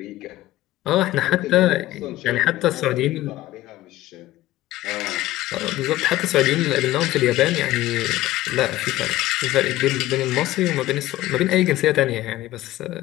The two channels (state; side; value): quieter; right; 15.9 dB